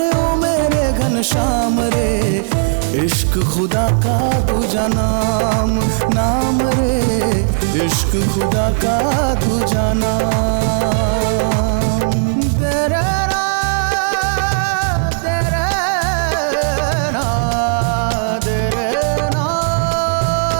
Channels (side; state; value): left; silent; 69 dB below the other